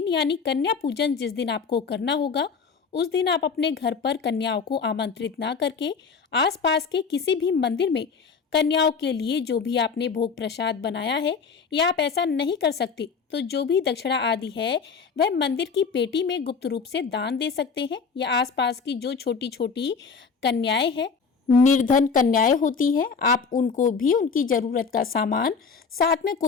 यानी कन्या पूजन जिस दिन आपको करना होगा, उस दिन आप अपने घर पर कन्याओं को आमंत्रित ना करके आसपास के किसी भी मंदिर में कन्याओं के लिए जो भी आपने भोग प्रसाद बनाया है, या आप ऐसा नहीं कर सकते तो जो भी दक्षिणा आदि है वह मंदिर की पेटी में गुप्त रूप से दान दे सकते हैं, या आसपास की जो छोटी छोटी कन्याएं हैं, निर्धन कन्याएं होती हैं, आप उनको भी उनकी जरूरत का सामान साथ में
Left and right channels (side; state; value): right; quieter; 5.4 dB